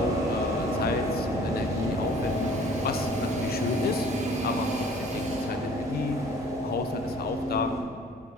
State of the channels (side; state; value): both; normal; correlation 0.51